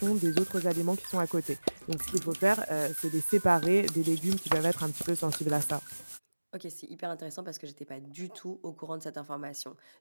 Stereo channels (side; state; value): both; inverted; correlation -1.00